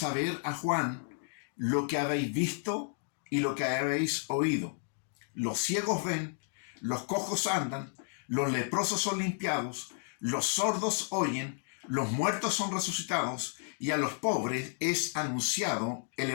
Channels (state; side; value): silent; right; 56 dB below the other